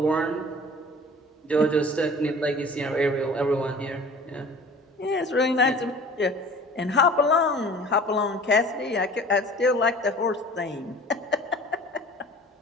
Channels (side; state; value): both; normal; correlation 0.45